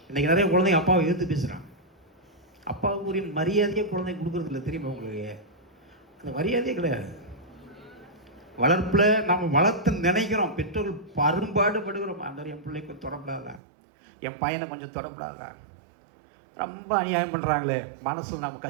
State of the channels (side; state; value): left; drops out; at 13.6 s